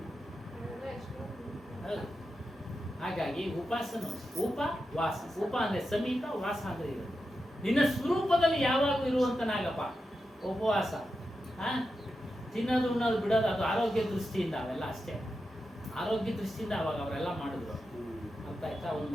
ಅದೆಲ್ಲ ಎಷ್ಟು ಹಾಗಾಗಿ ಉಪಾಸನ, ಉಪವಾಸ. ಉಪ ಅಂದ್ರೆ ಸಮೀಪ, ವಾಸ ಅಂದ್ರೆ ಇರೋದು. ನಿನ್ನ ಸ್ವರೂಪದಲ್ಲಿ ಯಾವಾಗೂ ಇರುವಂತನಾಗಪ್ಪ ಉಪವಾಸ. ತಿನ್ನೋದು ಉಣ್ಣೋದು ಬಿಡೋದು ಅದು ಆರೋಗ್ಯ ದೃಷ್ಟಿಯಿಂದ, ಅವೆಲ್ಲ ಅಷ್ಟೇ ಆರೋಗ್ಯ ದೃಷ್ಟಿಯಿಂದ ಅವಾಗ ಅವರೆಲ್ಲ ಮಾಡಿದ್ರು. ಅರ್ಥ ಆಯ್ತಾ? ಒಂದು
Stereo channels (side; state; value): both; normal; correlation 0.89